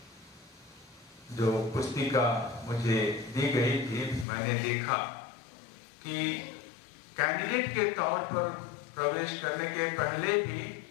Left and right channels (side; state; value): right; drops out; at 4.2 s